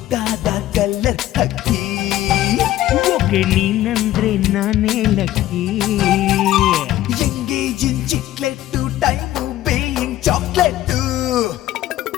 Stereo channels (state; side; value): quieter; right; 14.1 dB